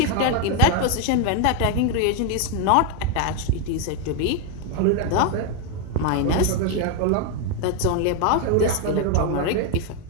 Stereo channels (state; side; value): different; both; correlation 0.01